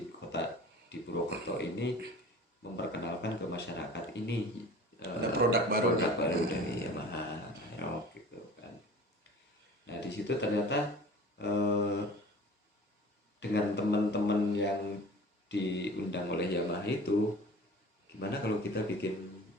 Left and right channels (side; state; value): both; normal; correlation 0.43